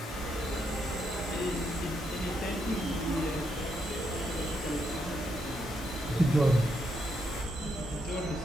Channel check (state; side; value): normal; both; correlation 0.79